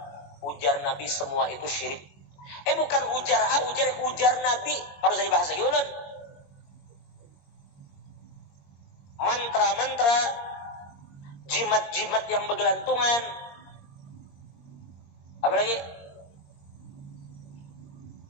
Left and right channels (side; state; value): right; late; 21 ms